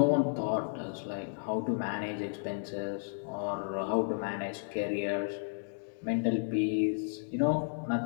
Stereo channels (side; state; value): right; silent; digital silence